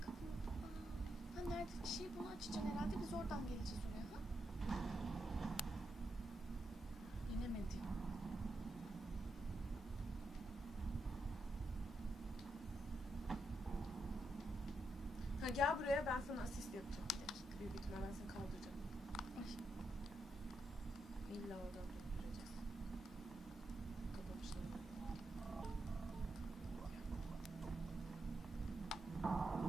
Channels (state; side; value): normal; both; correlation 0.83